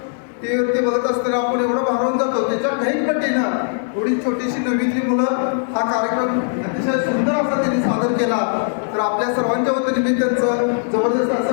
टीव्हीवरती बघत असताना आपण एवढं भारावून जातो, त्याच्या काही पटीनं एवढी छोटीशी नवीतली मुलं हा कार्यक्रम अतिशय सुंदर असा त्यांनी सादर केला। तर आपल्या सर्वांच्या वतीने मी त्यांचं जबरदस्त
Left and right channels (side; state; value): right; silent; 66 dB below the other